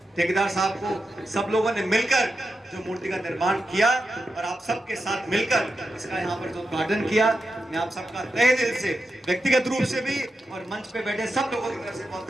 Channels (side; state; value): both; normal; correlation 0.89